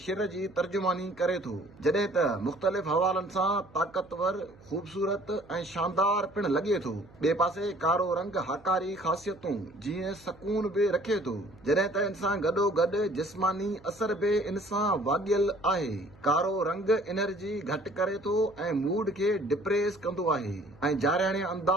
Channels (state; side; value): noise; right; hum, 25 dB below the sound